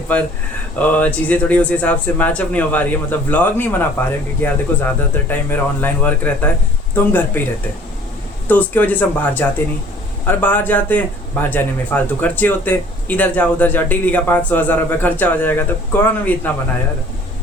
पर चीज़ें थोड़ी उस हिसाब से मैचअप नहीं हो पा रही है। मतलब व्लॉग नहीं बना पा रहे हैं क्योंकि यार देखो, ज़्यादातर टाइम मेरा ऑनलाइन वर्क रहता है, तो हम घर पे ही रहते हैं, तो उसकी वजह से हम बाहर जाते नहीं। और बाहर जाते हैं, बाहर जाने में फालतू खर्चे होते हैं, इधर जाओ उधर जाओ, डेली का 500-1000 रुपये खर्चा हो जाएगा। तो कौन भी इतना बनाया यार।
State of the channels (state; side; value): normal; both; correlation 0.53